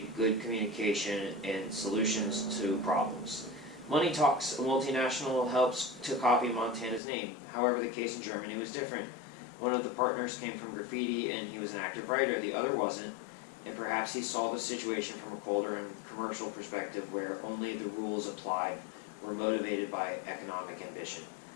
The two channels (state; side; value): drops out; right; at 7.0 s